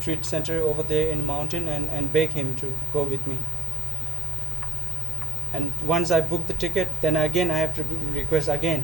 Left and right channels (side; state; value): both; normal; correlation 0.50